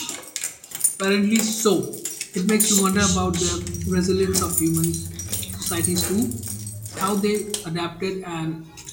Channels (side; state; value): both; identical; correlation 1.00